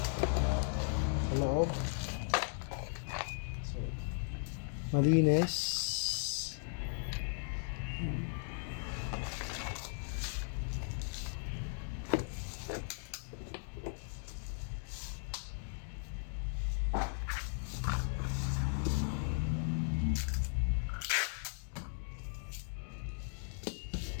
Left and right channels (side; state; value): right; silent; digital silence